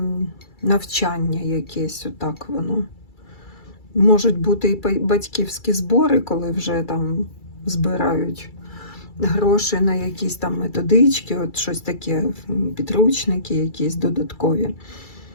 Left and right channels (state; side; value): late; right; 2.3 ms